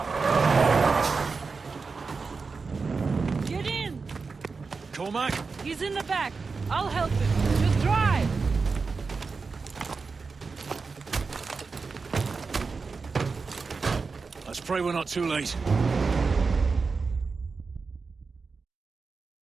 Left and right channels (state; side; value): quieter; left; 4.6 dB